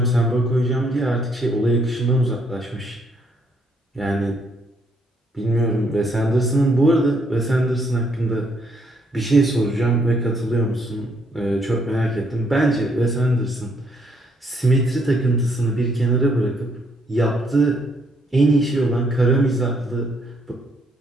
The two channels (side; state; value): both; normal; correlation 0.71